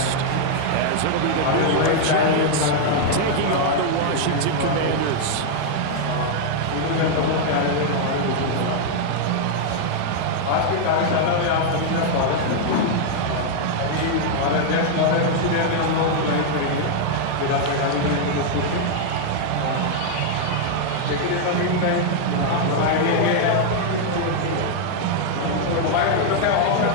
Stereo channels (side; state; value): both; different; correlation -0.01